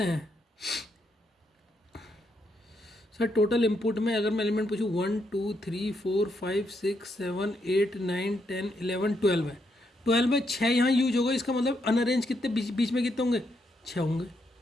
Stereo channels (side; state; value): both; normal; correlation 0.78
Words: हैं सर? टोटल इनपुट में अगर मैं एलिमेंट पूछूँ 1 2 3 4 5 6 7 8 9 10 11 12 है। 12 में 6 यहाँ यूज होगा, इसका मतलब अनअरेंज कितने बीच में कितने होंगे, 6 होंगे।